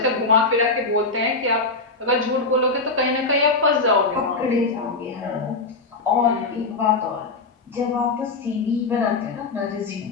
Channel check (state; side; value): quieter; right; 3.6 dB